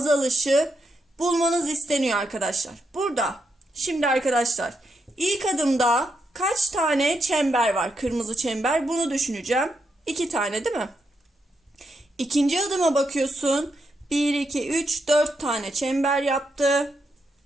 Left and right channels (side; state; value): both; normal; correlation 0.82